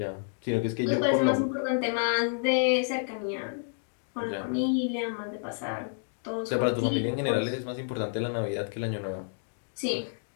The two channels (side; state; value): right; silent; digital silence